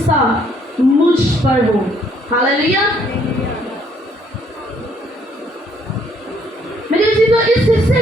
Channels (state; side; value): normal; both; correlation 0.66